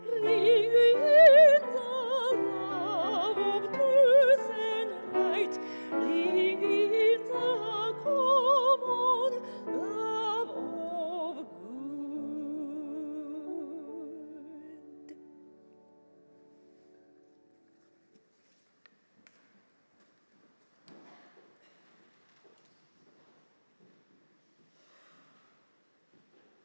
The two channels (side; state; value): both; inverted; correlation -1.00